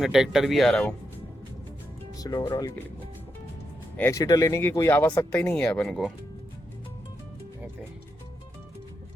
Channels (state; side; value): normal; both; correlation 0.84